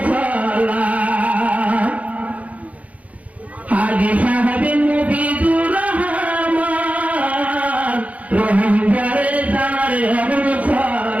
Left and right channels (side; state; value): left; late; 0.069 ms